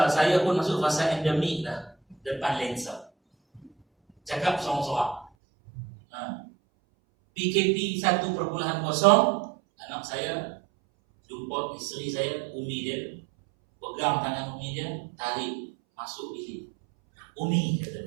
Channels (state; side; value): drops out; left; at 5.3 s